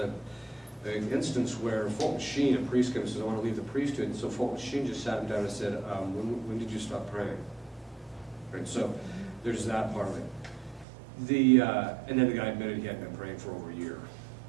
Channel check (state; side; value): drops out; left; at 10.9 s